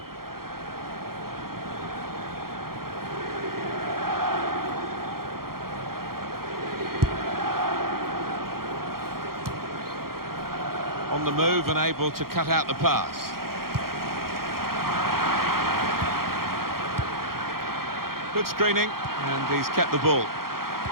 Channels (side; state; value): left; late; 0.93 ms